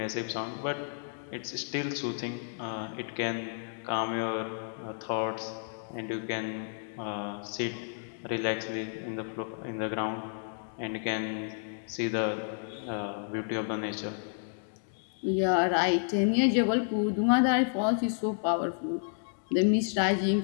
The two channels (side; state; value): right; silent; digital silence